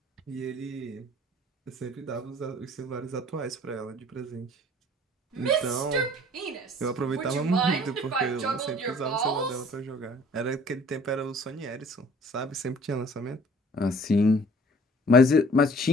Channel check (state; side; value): normal; both; correlation 0.52